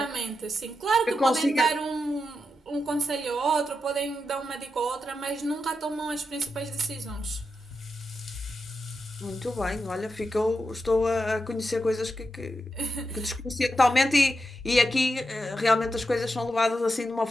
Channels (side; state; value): both; normal; correlation 0.87